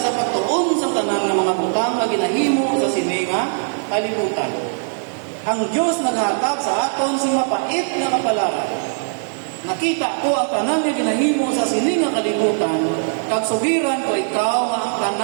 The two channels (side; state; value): left; silent; digital silence